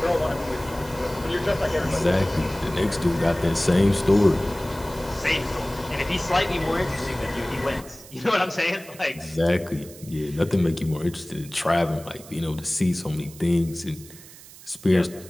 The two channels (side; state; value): right; noise; hiss, 19 dB below the sound